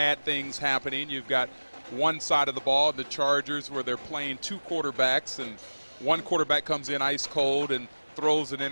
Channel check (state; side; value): inverted; both; correlation -1.00